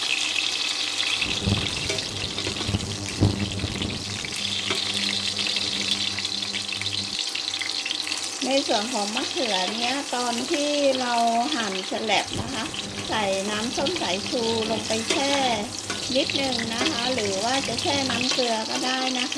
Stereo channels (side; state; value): both; identical; correlation 1.00